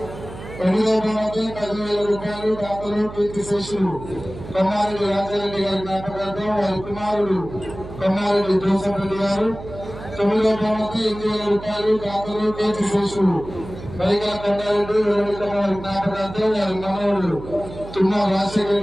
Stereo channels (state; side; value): noise; right; hum, 13 dB below the sound